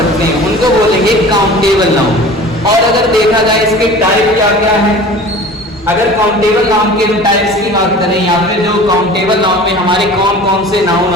हैं उनको बोलेंगे काउंटेबल नाउन। और अगर देखा जाए इसके टाइप क्या क्या है, अगर काउंटेबल नाउन के टाइप्स की बात करें या फिर जो काउंटेबल नाउन में हमारे कौन कौन से नाउन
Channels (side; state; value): both; normal; correlation 0.41